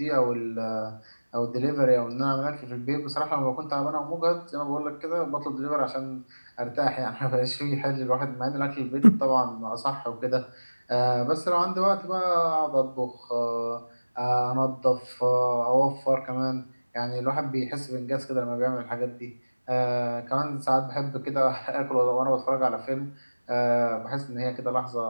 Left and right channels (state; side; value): inverted; both; correlation -1.00